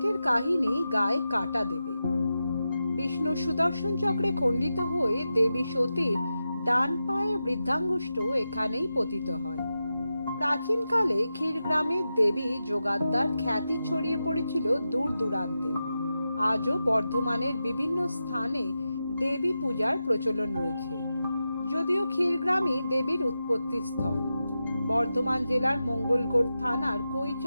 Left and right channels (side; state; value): both; inverted; correlation -0.90